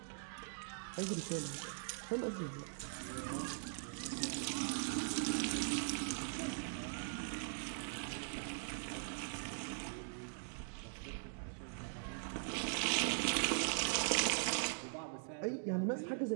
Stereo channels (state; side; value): silent; left; digital silence